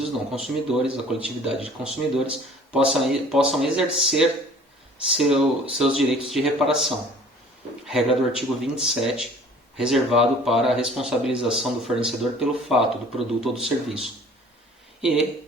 não consumidores, a coletividade de consumidores, possam exercer seus direitos de reparação. Regra do artigo 27, reservado para a responsabilização do fornecedor pelo fato do produto ou do serviço. E,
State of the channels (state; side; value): normal; both; correlation 0.50